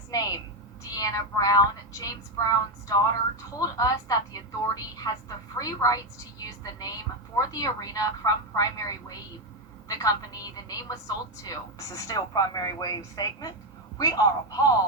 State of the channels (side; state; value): both; normal; correlation 0.08